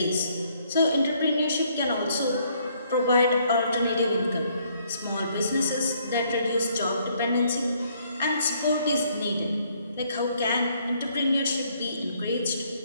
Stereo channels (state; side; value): inverted; both; correlation -0.67